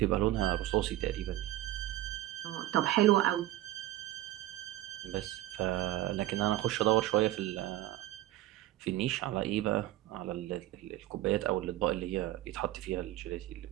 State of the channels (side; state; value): left; quieter; 15.2 dB